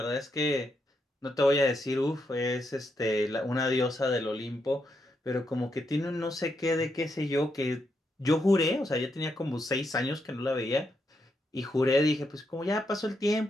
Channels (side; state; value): both; normal; correlation 0.81